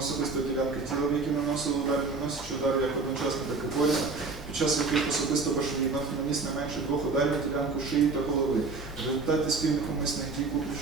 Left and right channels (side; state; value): left; quieter; 4.0 dB